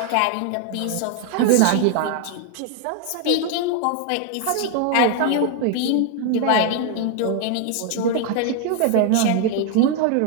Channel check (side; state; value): both; different; correlation 0.00